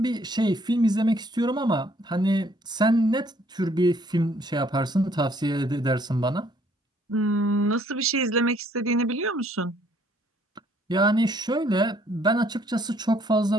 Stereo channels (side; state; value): both; normal; correlation 0.64